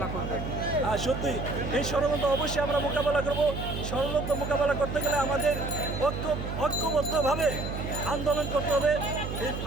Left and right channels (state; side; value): noise; right; hum, 5 dB below the sound